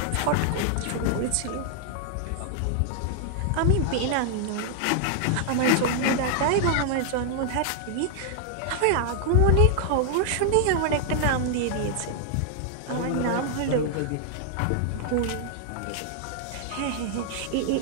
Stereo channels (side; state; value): both; different; correlation -0.01